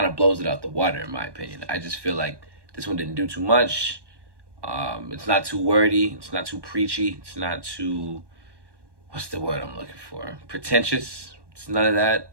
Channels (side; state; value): left; late; 1.1 ms